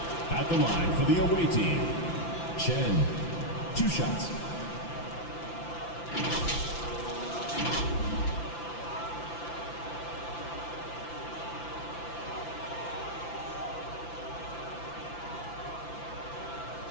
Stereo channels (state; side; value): late; right; 5.9 ms